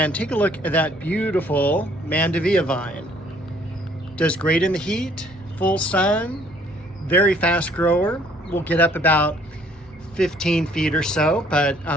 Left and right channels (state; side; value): normal; both; correlation 0.61